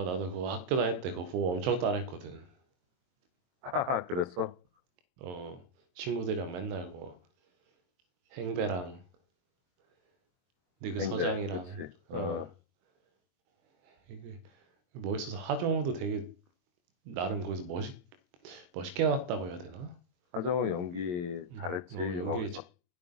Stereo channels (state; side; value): late; left; 22 ms